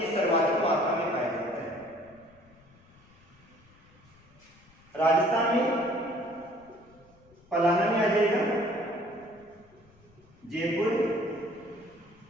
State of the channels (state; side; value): noise; left; rumble, 28 dB below the sound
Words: सर्वाधिक मात्रा में पाया जाता है। राजस्थान में पलाना में आ जाएगा, जयपुर